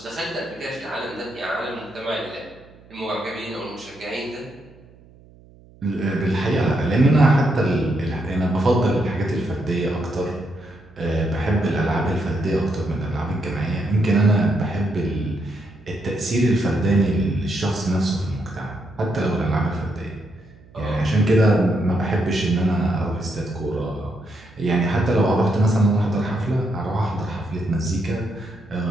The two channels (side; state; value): right; noise; hum, 25 dB below the sound